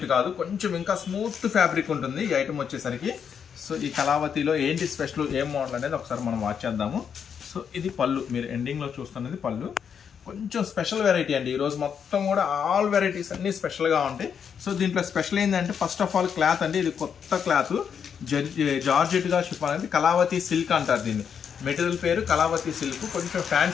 కాదు, కొంచెం ఇంకా స్మూత్ ఫ్యాబ్రిక్ ఉంటుంది ఈ ఐటమ్ వచ్చేసరికి. సో ఈ కళావతిలో ఏంటి స్పెషల్, ఏం మోడల్ అనేది ఒకసారి మనం వాచ్ చేద్దాము. సో ఇది పళ్ళు, మీరు ఎండింగ్లో చూస్తున్నది పళ్ళు. కొంచెం స్పెషల్ వెరైటీ అండి. ఈరోజు మొత్తం కూడా ఆల్ వెరైటీస్ అన్నీ స్పెషల్గా ఉంటాయి. సో దీంట్లో స్పెషల్ ఏంటంటే ఫస్ట్ ఆఫ్ ఆల్ క్లాత్ అండి. ఇది కొత్త క్లాత్, జార్జెట్గా షిఫాన్ అనేది కళావతి సిల్క్ అంటారు దీన్ని. మెటీరియల్ పేరు కళావతి సిల్క్. కొంచెం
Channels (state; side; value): quieter; right; 7.4 dB